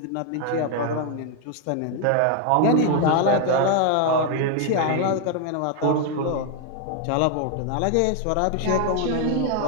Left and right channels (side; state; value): both; different; correlation 0.00